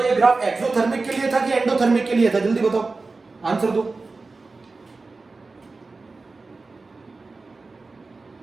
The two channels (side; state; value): left; quieter; 3.8 dB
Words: ये ग्राफ एक्सोथर्मिक के लिए था कि एंडोथर्मिक के लिए था? जल्दी बताओ, आंसर दो।